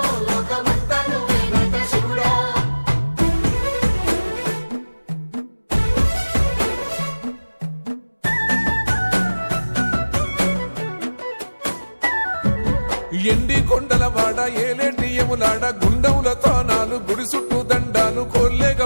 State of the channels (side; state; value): both; inverted; correlation -1.00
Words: లోకమంతా నువ్వే నట శివుడా ఎండి కొండల వాడ ఏలేటి యములాడ గుండములతో నాలు గుడి చుట్టూ దండాలు కొల్లేగ